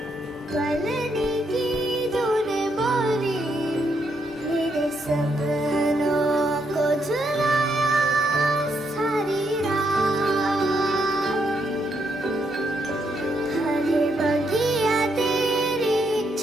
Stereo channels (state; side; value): normal; both; correlation 0.77